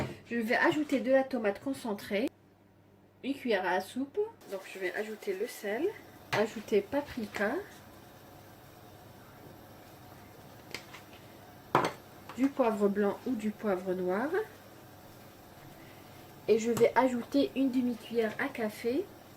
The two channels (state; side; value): identical; both; correlation 1.00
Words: Je vais ajouter de la tomate concentrée, une cuillère à soupe. Donc je vais ajouter le sel, ajouter paprika, du poivre blanc ou du poivre noir, et je vais ajouter une demi-cuillère à café